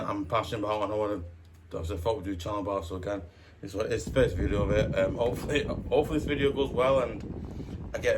I'm passionate about and I want to. I thought we'd do a channel about. So again, it's the first video of it. Hopefully this video goes well and I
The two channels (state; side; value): identical; both; correlation 1.00